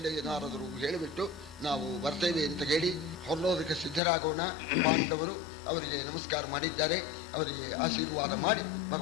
ನಾರದರು ಹೇಳಿಬಿಟ್ಟು ನಾವು ಬರ್ತೇವೆ ಅಂತ ಹೇಳಿ ಹೊರಡೋದಕ್ಕೆ ಸಿದ್ಧರಾಗೋಣ. ಪಾಂಡವರು ಅವರಿಗೆ ನಮಸ್ಕಾರ ಮಾಡಿದ್ದಾರೆ, ಅವರಿಗೆ ಆಶೀರ್ವಾದ ಮಾಡಿ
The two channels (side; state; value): right; drops out; at 4.0 s